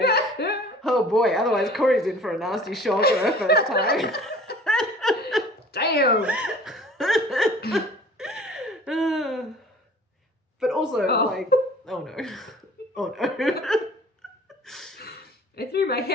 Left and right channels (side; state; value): both; normal; correlation 0.48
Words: Oh boy, otherwise Corey's in for a nasty shock for her first time. Damn. But also, Oh. like... Oh no. Oh no. I threw my